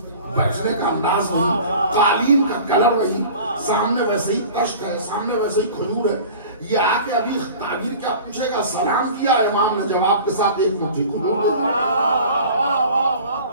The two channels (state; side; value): inverted; both; correlation -0.42